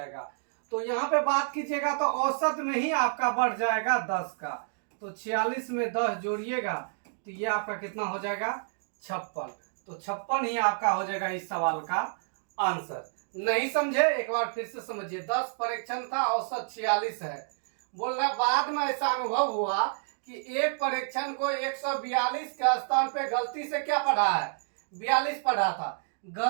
तो यहाँ पे बात कीजिएगा तो औसत में ही आपका बढ़ जाएगा 10 का। तो 46 में 10 जोड़िएगा तो ये आपका कितना हो जाएगा? 56। तो 56 ही आपका हो जाएगा इस सवाल का आंसर। नहीं समझे? एक बार फिर से समझिए। 10 परीक्षण था, औसत 46 है। बोल रहा बाद में ऐसा अनुभव हुआ कि एक परीक्षण को 142 के स्थान पे गलती से क्या पढ़ा है? 42 पढ़ा था।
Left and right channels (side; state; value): left; silent; digital silence